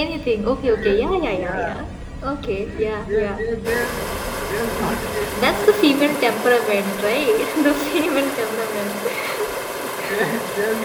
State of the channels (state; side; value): identical; both; correlation 1.00